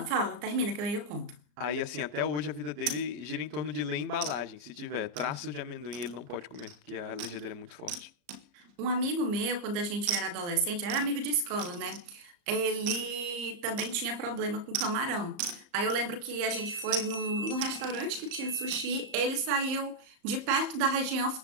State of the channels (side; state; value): left; late; 34 ms